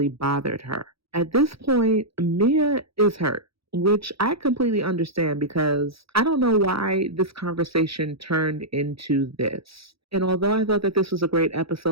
bothered her. At this point, Mia is hurt, which I completely understand because I don't know why this conversation turned into this. And although I thought that this was a great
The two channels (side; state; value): left; late; 0.76 ms